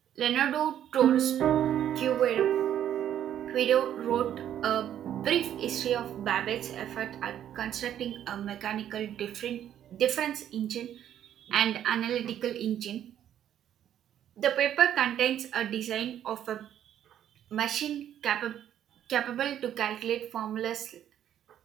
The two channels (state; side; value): quieter; left; 10.5 dB